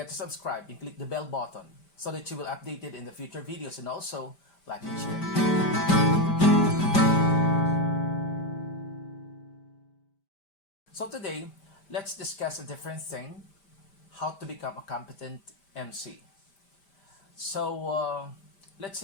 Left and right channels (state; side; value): late; right; 5.1 ms